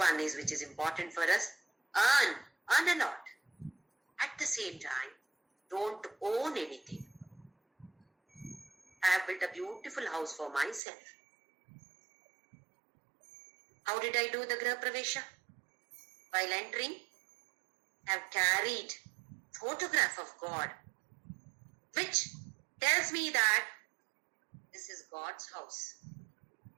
is, which is important for us, earn a lot. At the same time, don't own anything. I have built a beautiful house for myself. How did I do the Griha Pravesha? While entering, I have carried photograph of God, which tells me that this is God's house.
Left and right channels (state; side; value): drops out; left; at 10.8 s